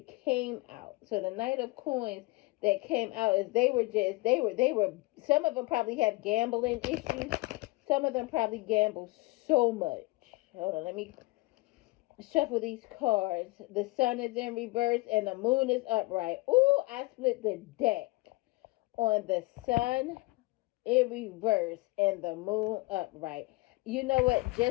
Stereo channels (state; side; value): quieter; right; 22.8 dB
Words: came out. So the Knight of Coins that came out is they were some of them probably have gambling issues. Some of them probably gamble so much. Hold on, let me shuffle these cards. The Sun is in reverse and the Moon is upright. Ooh, I split the deck on the Sun in reverse and the Moon upright. You know what?